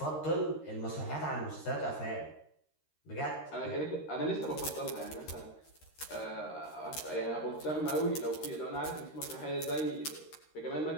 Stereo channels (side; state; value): right; late; 13 ms